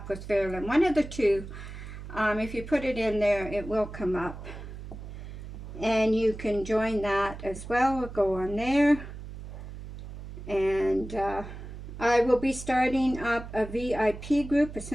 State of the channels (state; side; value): noise; right; hum, 11 dB below the sound